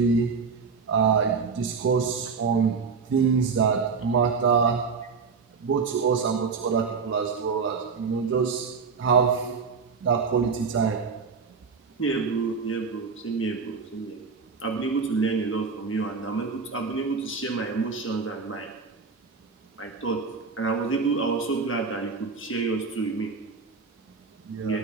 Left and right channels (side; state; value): left; quieter; 5.2 dB